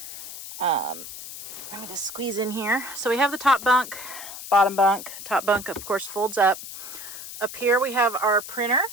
Let me just squeeze in here. So we have the top bunk, bottom bunk. Top bunk, of course, folds up. Up here we have our printer.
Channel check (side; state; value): left; noise; hiss, 11 dB below the sound